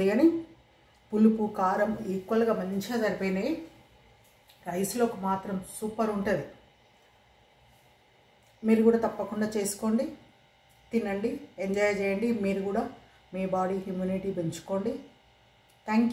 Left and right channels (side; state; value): both; identical; correlation 1.00